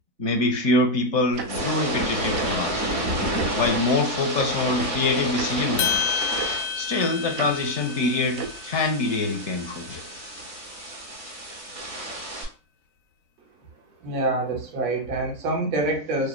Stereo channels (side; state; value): left; late; 4.0 ms